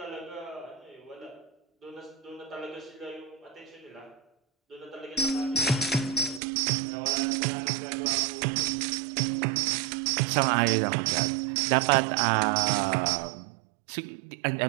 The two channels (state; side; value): drops out; left; at 6.4 s